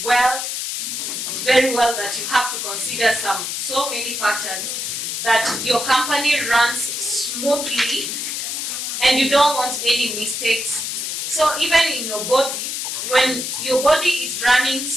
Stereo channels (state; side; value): noise; left; hiss, 3 dB below the sound